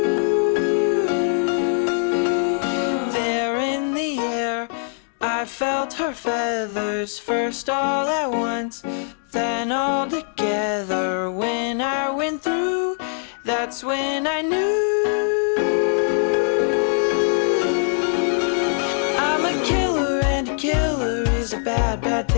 There in the air, I felt her feathers, first all at once, then all together. When I went through, that's when I knew. I'm a killer, and a killer is a bad, bad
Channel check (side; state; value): right; silent; digital silence